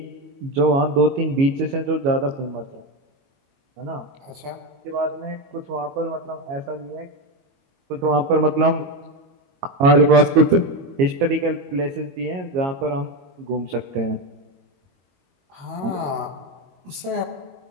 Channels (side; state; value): left; late; 22 ms